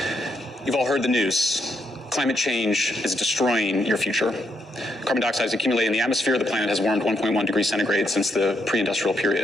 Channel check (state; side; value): normal; both; correlation 0.78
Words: You've all heard the news. Climate change is destroying your future. Carbon dioxide is accumulating in the atmosphere. The planet has warmed 1.1 degrees centigrade since the pre-industrial